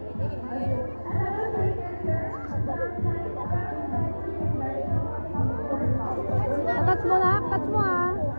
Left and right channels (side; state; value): both; inverted; correlation -1.00